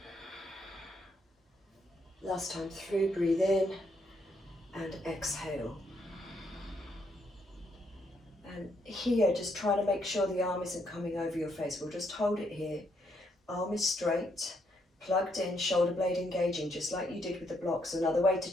Last time through, breathe in and exhale. And here, just trying to make sure the arm isn't coming over your face. We'll just hold it here. Arm is straight, plugged in, shoulder blade engaging, just like you did with the blocks. Another way to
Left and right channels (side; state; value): both; normal; correlation 0.75